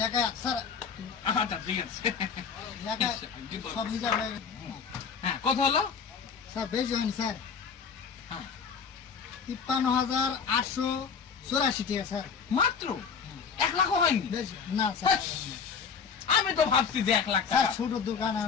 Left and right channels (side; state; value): right; quieter; 6.1 dB